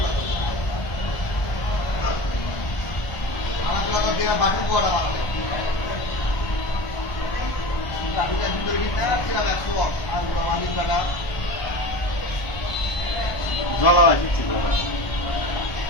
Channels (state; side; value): late; right; 1.5 ms